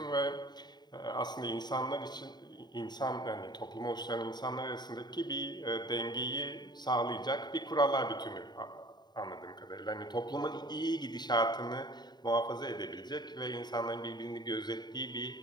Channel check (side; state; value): right; late; 0.20 ms